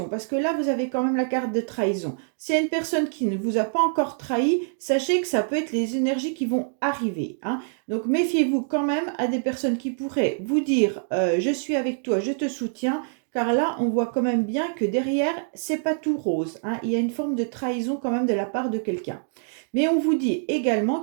parce que là, vous avez quand même la carte de trahison. S'il y a une personne qui ne vous a pas encore trahi, sachez que ça peut être les énergies qui vont arriver, hein. Donc, méfiez-vous quand même à des personnes qui pourraient vous dire je suis avec toi, je te soutiens. Car là, on voit quand même bien que derrière, c'est pas tout rose, hein. Il y a une forme de trahison quand même de la part de quelqu'un. Mais on vous dit également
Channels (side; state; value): left; silent; digital silence